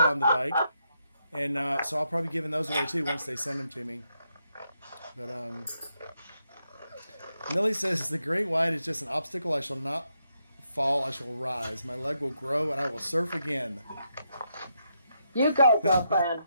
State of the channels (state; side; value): inverted; both; correlation -0.81